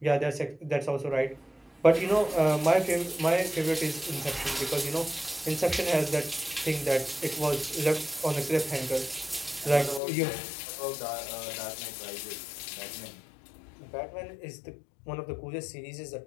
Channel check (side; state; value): right; drops out; at 10.0 s